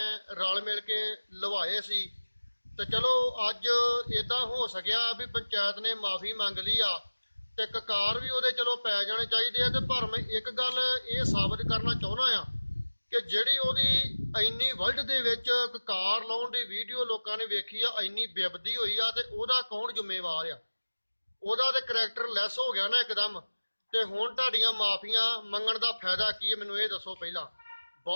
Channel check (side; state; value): both; inverted; correlation -1.00